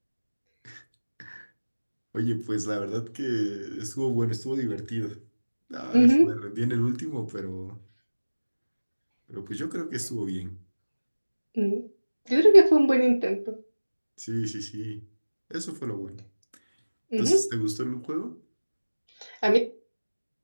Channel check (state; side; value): inverted; both; correlation -1.00